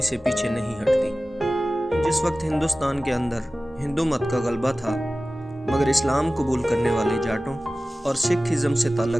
سے پیچھے نہیں ہٹتی۔ جس وقت ہندوستان کے اندر ہندو مت کا غلبہ تھا، مگر اسلام قبول کرنے والے جاٹوں اور سکھ ازم سے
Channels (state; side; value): normal; both; correlation 0.96